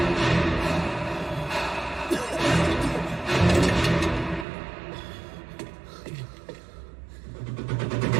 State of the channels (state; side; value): drops out; left; at 4.5 s